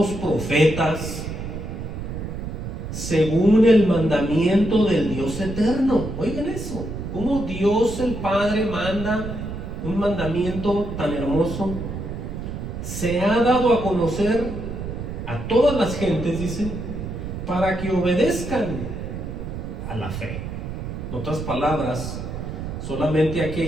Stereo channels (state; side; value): noise; right; rumble, 7 dB below the sound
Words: profetas, según el mandamiento del Dios eterno. Oigan eso, cómo Dios el Padre manda un mandamiento tan hermoso. Se ha dado a conocer a todas las gentes, dice, para que obedezcan a la fe. En otras palabras, solamente